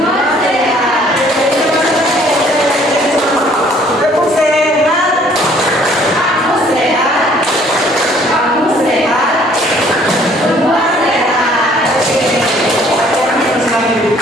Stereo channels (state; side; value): normal; both; correlation 0.59